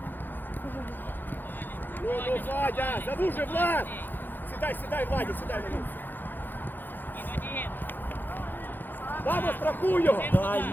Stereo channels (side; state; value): right; late; 0.090 ms